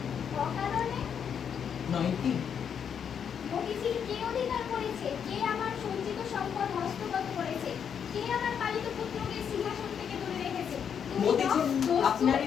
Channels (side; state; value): right; quieter; 7.7 dB